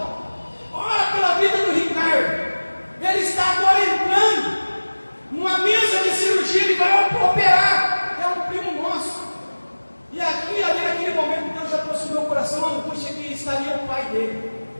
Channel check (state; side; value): inverted; both; correlation -1.00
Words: Ora pela vida do Ricardo. Ele está agora entrando numa mesa de cirurgia, ele vai operar. É um primo nosso. E aqui, ali naquele momento, Deus já trouxe no meu coração a angústia que estaria o pai dele.